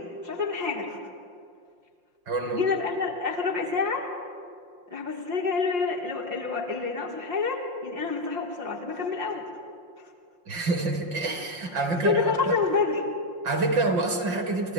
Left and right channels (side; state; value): left; late; 5.7 ms